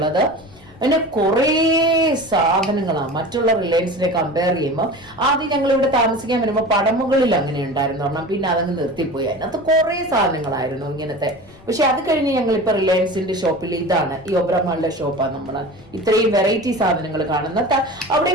പിന്നെ കുറേ സാധനങ്ങളാണ് മറ്റുള്ള റിലയൻസിനെ കമ്പയർ ചെയ്യുമ്പോൾ. ആദ്യം ഞങ്ങൾ ഇവിടെ താമസിക്കാൻ വരുമ്പോൾ പടമുകളിൽ അങ്ങനെ ഉണ്ടായിരുന്നു പറഞ്ഞാൽ, പിന്നെ അതങ്ങ് നിർത്തിപ്പോയി. അതിനകത്ത് കുറേ സാധനങ്ങളായിരുന്നു ഇങ്ങനത്തെ. പക്ഷെ അത് കഴിഞ്ഞ് ഞങ്ങൾ ഇപ്പൊ റിലയൻസിന്റെ ഷോപ്പിൽ ഇതാണ്, ഈ ഒബ്രോമോളിന്റെ ഷോപ്പാണ് നമ്മൾ ഇത്രയും വെറൈറ്റി സാധനങ്ങൾ കാണുന്നത്. അവിടെ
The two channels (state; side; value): noise; left; rumble, 24 dB below the sound